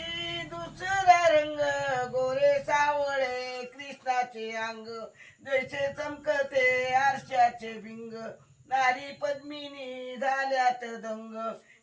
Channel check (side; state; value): both; identical; correlation 1.00